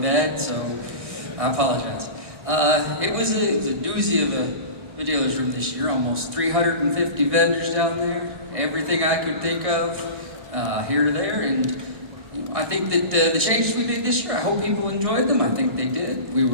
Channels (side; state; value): left; late; 1.6 ms